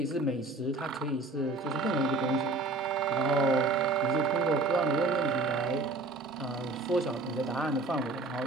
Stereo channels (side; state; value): left; quieter; 3.3 dB